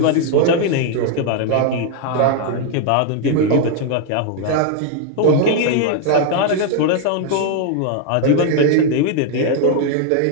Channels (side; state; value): both; different; correlation 0.00